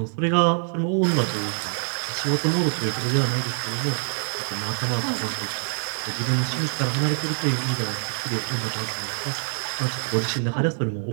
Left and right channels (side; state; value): left; silent; digital silence